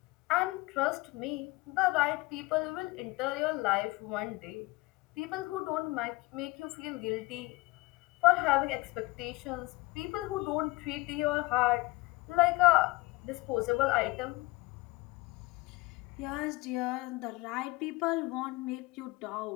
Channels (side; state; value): right; quieter; 22.5 dB